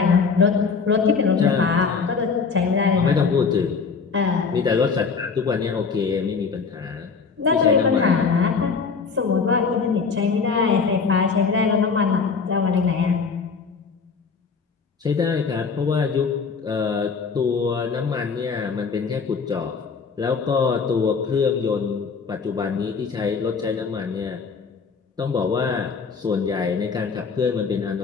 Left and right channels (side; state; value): right; quieter; 5.3 dB